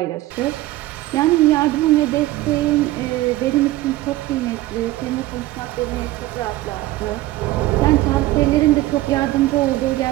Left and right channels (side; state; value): left; quieter; 17.0 dB